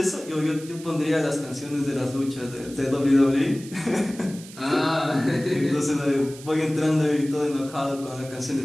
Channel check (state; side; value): noise; right; hiss, 18 dB below the sound